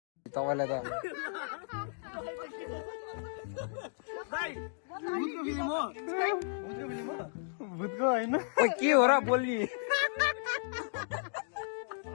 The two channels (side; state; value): right; silent; digital silence